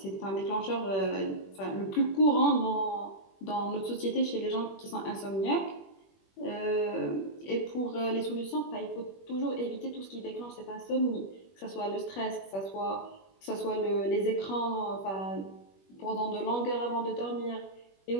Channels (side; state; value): right; late; 21 ms